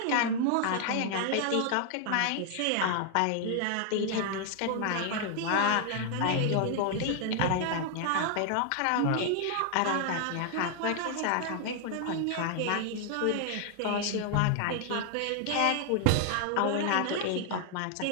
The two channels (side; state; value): both; different; correlation 0.00